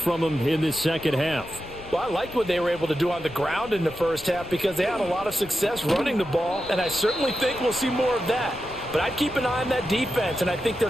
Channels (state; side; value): noise; left; rumble, 17 dB below the sound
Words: them in this second half? Well, I liked what they were able to do on the ground in the first half because they had a lot of success running the ball, and I certainly think we'll see more of that. But I'd keep an eye on that defense, and I think their